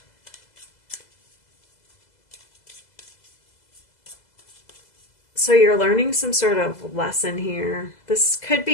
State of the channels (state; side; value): late; right; 2.0 ms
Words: so you're learning some sort of lesson here. This could